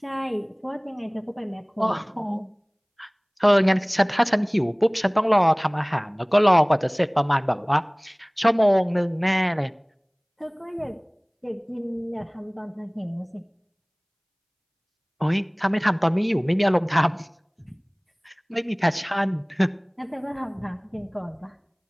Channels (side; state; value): both; identical; correlation 1.00